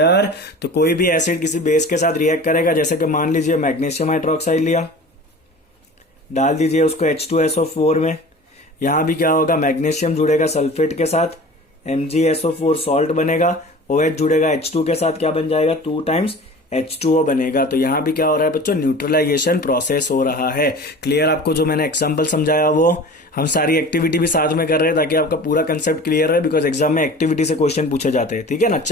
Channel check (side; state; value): both; normal; correlation 0.39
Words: तो कोई भी एसिड किसी बेस के साथ रिएक्ट करेगा, जैसे कि मान लीजिए मैग्नीशियम हाइड्रोक्साइड लिया, डाल दीजिए उसको H2SO4 में। यहां भी क्या होगा? मैग्नीशियम जुड़ेगा सल्फेट के साथ, MgSO4 सॉल्ट बनेगा, OH जुड़ेगा H2 के साथ, क्या बन जाएगा? 2 टाइम्स H2O बनेगा। तो यहां भी क्या हो रहा है बच्चों? न्यूट्रलाइजेशन प्रोसेस हो रहा है। क्लियर? आपको जो मैंने एग्जांपल समझाया वो हम सारी एक्टिविटी भी साथ में कर रहे हैं ताकि आपका पूरा कंसेप्ट क्लियर है, बिकॉज एग्जाम में एक्टिविटी से क्वेश्चन पूछे जाते हैं। ठीक है ना।